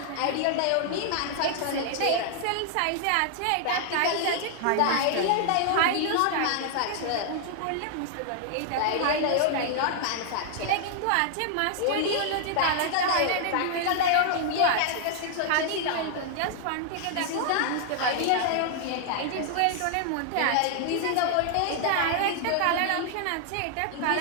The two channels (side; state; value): both; different; correlation 0.00